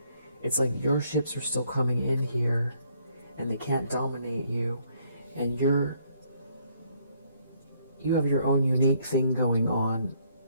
It's like your ships are still coming in here and they can't dominate you, and you have your own unique thing going on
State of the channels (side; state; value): both; inverted; correlation -0.68